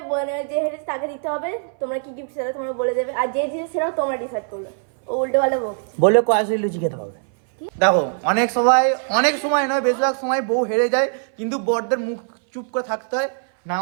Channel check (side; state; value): left; silent; 60 dB below the other